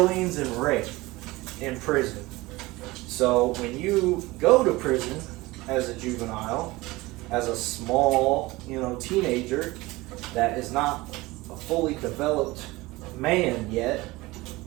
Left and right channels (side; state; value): left; quieter; 20.7 dB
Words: and rape in prison. So when you go to prison as a juvenile, as a small, you know, teenager that is not a fully developed man yet,